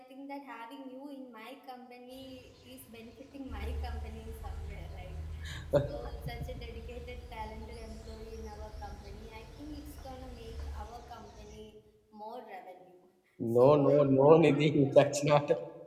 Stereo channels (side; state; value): both; identical; correlation 1.00